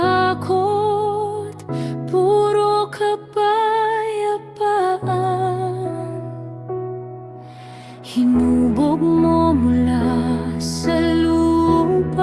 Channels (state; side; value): identical; both; correlation 1.00